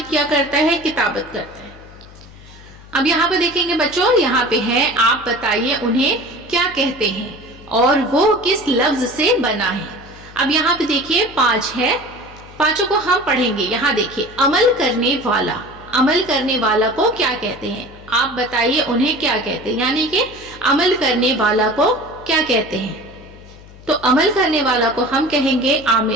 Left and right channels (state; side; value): noise; left; hum, 20 dB below the sound